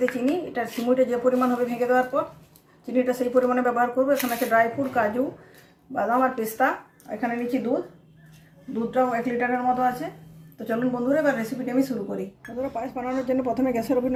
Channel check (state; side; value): identical; both; correlation 1.00